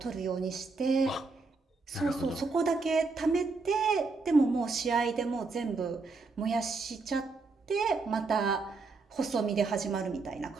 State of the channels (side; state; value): left; quieter; 4.0 dB